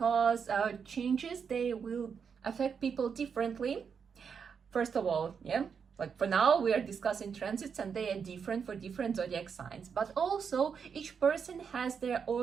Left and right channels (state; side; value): quieter; left; 6.5 dB